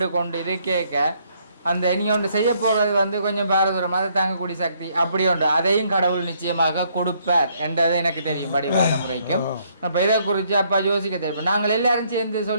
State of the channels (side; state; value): both; inverted; correlation -0.69